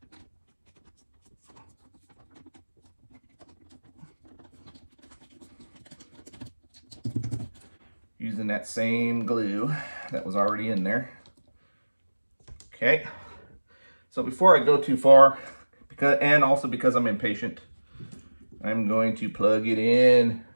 Using that same glue that was already in there. Okay, so before I go too far, and also because I'm impatient, I'm going to plug it in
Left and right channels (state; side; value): inverted; both; correlation -1.00